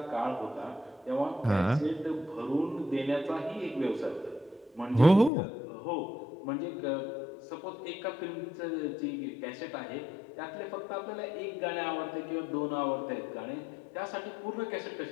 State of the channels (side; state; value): right; drops out; at 5.3 s